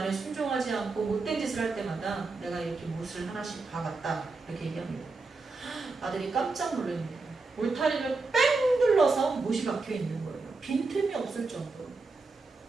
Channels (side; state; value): left; quieter; 3.8 dB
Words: 순종하지 않고 못된 짓을 할 때마다 내가 이렇게 못을 하나씩 박았다. 이렇게 얘기합니다. 아들이 깜짝 놀랍니다. 울타리를 뺑 눌러서 못이 박혀 있는 거예요. 빈틈이 없을 정도로.